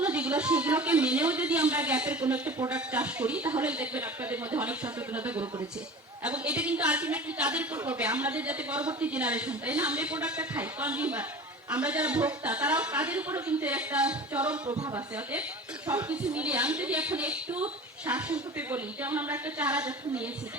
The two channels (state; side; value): normal; both; correlation 0.37